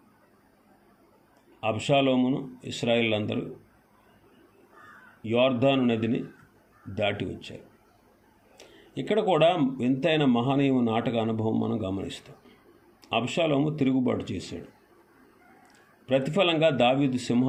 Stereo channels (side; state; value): both; identical; correlation 1.00